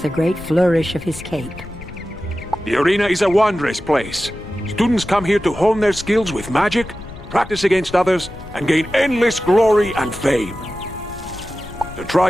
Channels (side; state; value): left; noise; rumble, 15 dB below the sound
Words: a great flourish of his cape. The arena is a wondrous place. Students come here to hone their skills with magic, practice against others, and gain endless glory and fame. To try